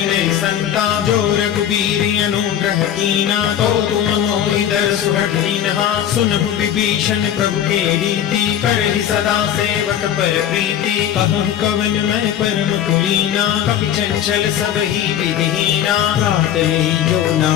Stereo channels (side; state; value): right; quieter; 10.2 dB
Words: नहीं संता जो रघुबीर अनुग्रह कीना तो तुम मोहि दरसु हठीनहा सुनहु विभीषण प्रभु के रीति करहि सदा सेवक पर प्रीति कहु कवन मैं परम कुलीना कपि चंचल सब ही विधिहीना गाते जो